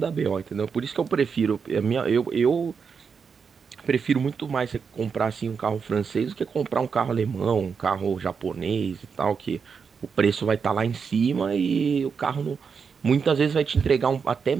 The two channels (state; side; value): quieter; left; 6.0 dB